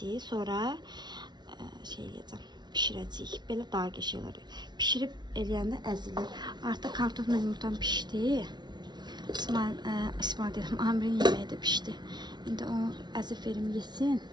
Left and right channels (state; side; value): late; left; 0.20 ms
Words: Sonra şey eləyəcəm. Pişirəcəyik. Belə daha qəşəng olur. Pişirib eləyəndə əzilir. Artıq kartofla yumurtam pişdi. İsmail dedim, Amirin yeməyi də pişdi. İndi onu əzif verim yesin,